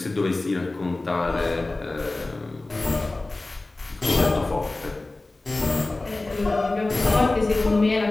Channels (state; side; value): quieter; right; 3.0 dB